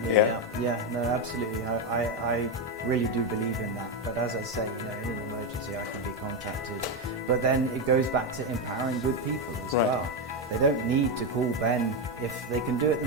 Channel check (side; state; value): both; normal; correlation 0.08